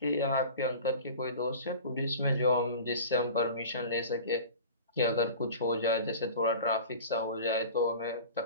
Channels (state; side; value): inverted; both; correlation -0.38